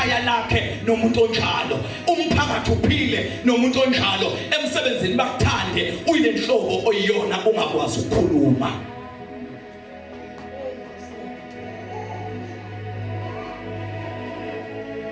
lakhe nomuntu onjalo umphakathi uphile nomuntu onjalo emsebenzini bakuthande uyile nhlobo oyiyona ungakwazi ukukhuluma.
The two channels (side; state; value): both; identical; correlation 1.00